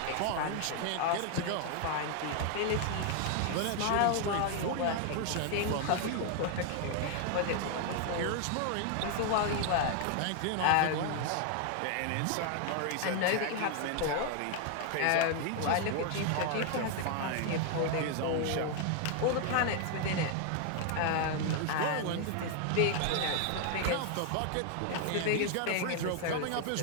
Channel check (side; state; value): both; different; correlation 0.00